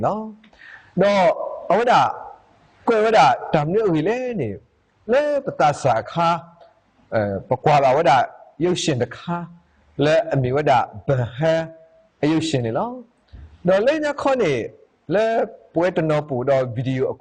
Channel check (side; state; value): both; identical; correlation 1.00